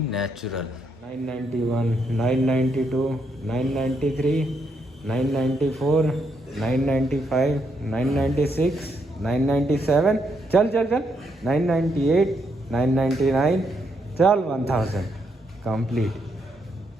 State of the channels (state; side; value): normal; both; correlation 0.77